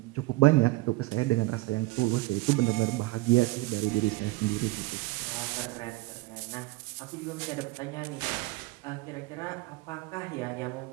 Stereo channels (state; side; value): quieter; left; 20.5 dB